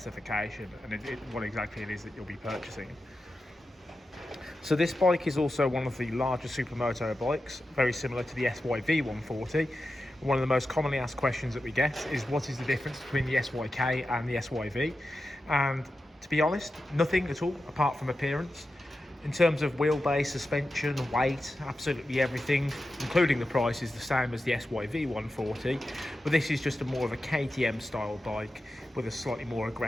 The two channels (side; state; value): both; normal; correlation 0.91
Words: and what exactly it is that you'll be purchasing. So this bike is also one of the larger Supermoto bikes, very similar to the SYV-140. One of the most commonly asked questions that we get is what is the difference between the SYK and the SYV? And to be honest, nothing at all apart from appearance. In terms of wheelbase, suspension, weight, absolutely everything, including the price, is the same as the SYV-140, but this is just more of a KTM style bike with a slightly more